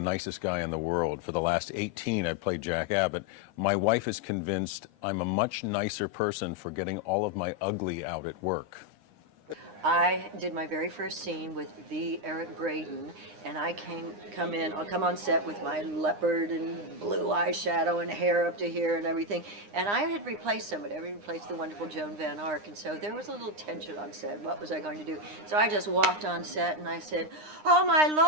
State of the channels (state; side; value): late; left; 9.8 ms